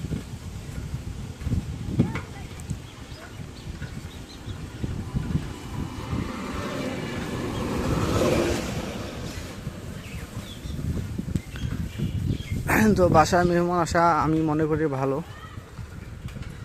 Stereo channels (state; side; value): identical; both; correlation 1.00